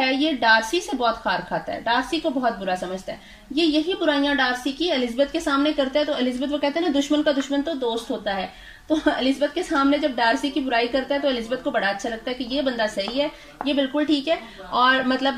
ये डार्सी से बहुत खार खाता है, डार्सी को बहुत बुरा समझता है। ये यही बुराइयां डार्सी की एलिजाबेथ के सामने करता है, तो एलिजाबेथ वो कहते हैं ना दुश्मन का दुश्मन तो दोस्त होता है। तो एलिजाबेथ के सामने जब डार्सी की बुराई करता है तो एलिजाबेथ को बड़ा अच्छा लगता है कि ये बंदा सही है, ये बिल्कुल ठीक है, और मतलब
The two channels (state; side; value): identical; both; correlation 1.00